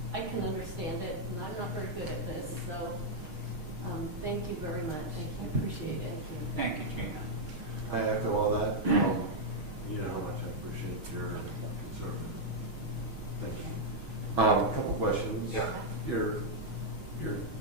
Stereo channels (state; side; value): late; left; 6.3 ms